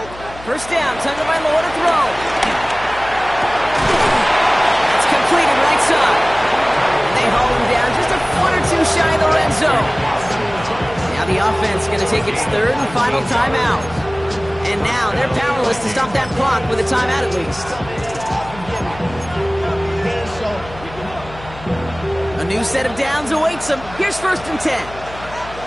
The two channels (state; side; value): noise; left; hum, 16 dB below the sound